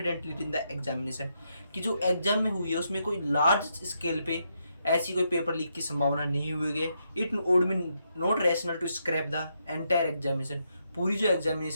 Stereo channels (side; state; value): both; inverted; correlation -0.80